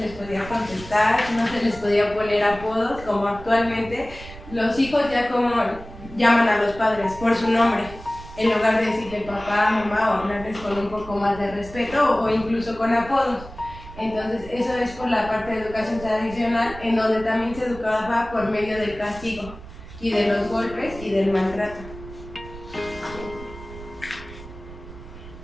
podía contestar, no se les podía poner apodos, como actualmente los hijos ya como llaman a los padres por su nombre, en lugar de decirle papá, mamá, o hablarles con un poco más de respeto o incluso con apodos. Entonces, eso es por la parte de educación tradicional, en donde también se educaba por medio del castigo y de los golpes y del maltrato.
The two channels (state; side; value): noise; right; rumble, 15 dB below the sound